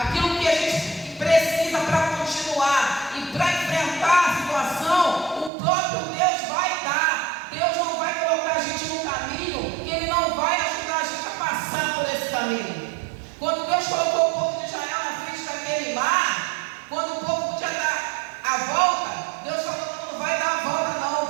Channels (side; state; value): left; drops out; at 5.5 s